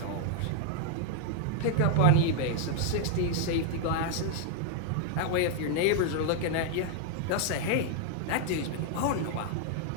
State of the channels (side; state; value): both; different; correlation 0.00